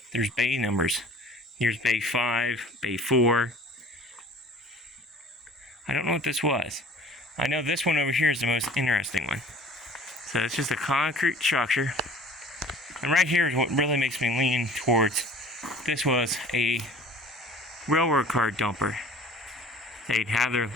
there's bay numbers. Here's bay 5, bay 4. I don't know what this was. I know this one over here is the most interesting one. So it's just a concrete structure. And right here is what really makes me lean towards this was a railroad car dumper. They'd have their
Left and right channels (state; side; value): normal; both; correlation 0.47